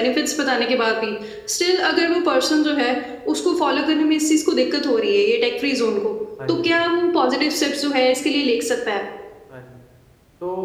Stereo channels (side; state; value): both; identical; correlation 1.00